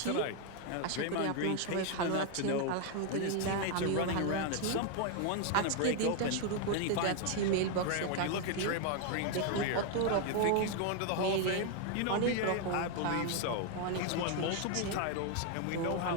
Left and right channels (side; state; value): both; different; correlation 0.00